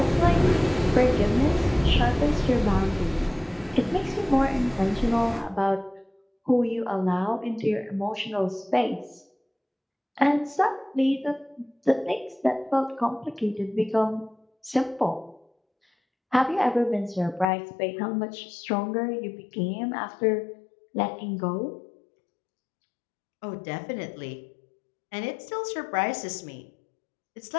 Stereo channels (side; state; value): right; drops out; at 17.5 s